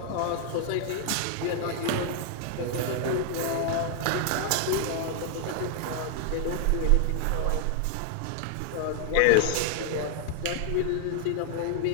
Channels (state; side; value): different; both; correlation 0.00